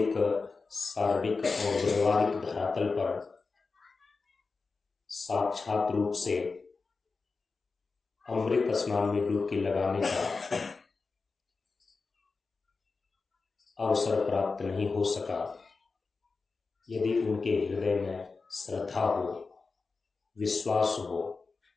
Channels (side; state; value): right; quieter; 4.3 dB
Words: शारीरिक और व्यवहारिक धरातल पर साक्षात रूप से अमृत स्नान में डुबकी लगाने का अवसर प्राप्त नहीं हो सका, यदि उनके हृदय में श्रद्धा हो, विश्वास हो,